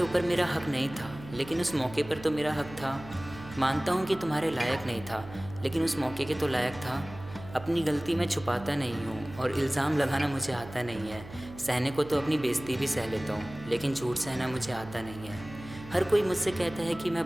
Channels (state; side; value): noise; right; hum, 15 dB below the sound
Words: ऊपर मेरा हक नहीं था, लेकिन उस मौके पर तो मेरा हक था। मानता हूँ कि तुम्हारे लायक नहीं था, लेकिन उस मौके के तो लायक था। अपनी गलती मैं छुपाता नहीं हूँ और इल्ज़ाम लगाना मुझे आता नहीं है। सहने को तो अपनी बेइज्जती भी सह लेता हूँ, लेकिन झूठ सहना मुझे आता नहीं है। हर कोई मुझसे कहता है कि मैं